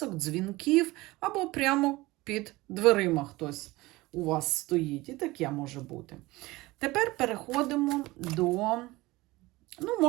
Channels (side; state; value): left; quieter; 20.4 dB